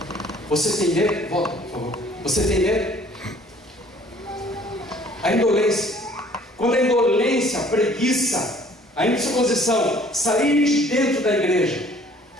Você tem medo? Volta, por favor. Você tem medo? A indolência. Quando a indolência, a preguiça, a indisposição sair de dentro da igreja,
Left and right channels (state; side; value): normal; both; correlation 0.56